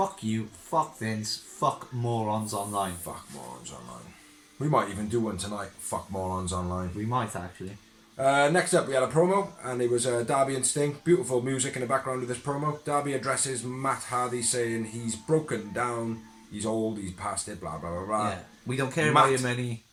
you, fuck Vince, fuck morons online. Fuck morons online. We might even do one tonight. Fuck morons online. We might actually. Next up, we had a promo, and it was Darby and Sting. Beautiful music in the background of this promo. Darby addresses Matt Hardy, saying he's broken down, he's old, he's past it, blah blah blah blah. Yeah, we don't care Matt about your money.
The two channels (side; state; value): both; identical; correlation 1.00